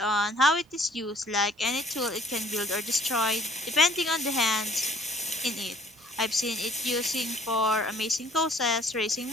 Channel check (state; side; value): normal; both; correlation 0.58